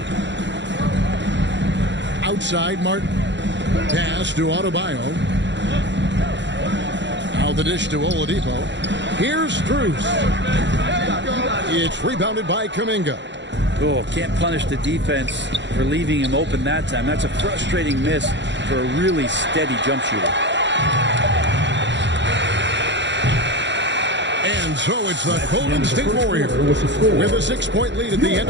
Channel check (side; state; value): left; late; 0.52 ms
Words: Outside, Martin. Pass to Adebayo. Now the dish to Oladipo. Here's Strus. It's rebounded by Kuminga. Oh, can't punish the defense for leaving him open that time. That's a frustrating miss for a really steady jump shooter. And And so it's the Golden State Warriors with a 6-point lead at the end